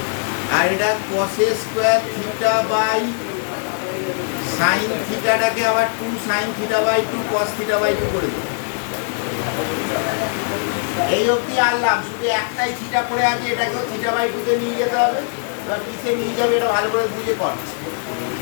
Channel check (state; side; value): silent; right; 61 dB below the other